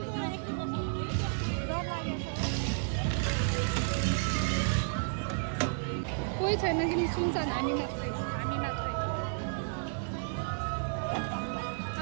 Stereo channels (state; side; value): silent; left; 56 dB below the other